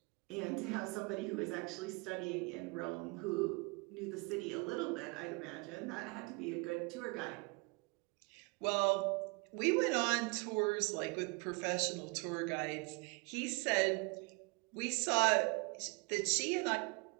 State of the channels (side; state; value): left; quieter; 29.7 dB